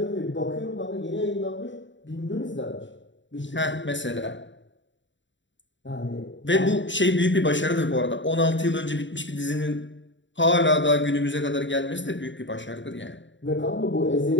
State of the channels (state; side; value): late; right; 0.54 ms